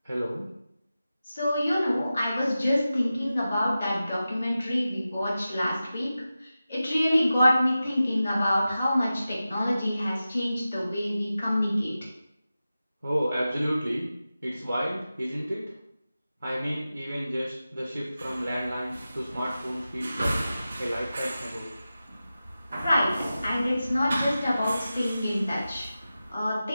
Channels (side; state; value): both; inverted; correlation -0.94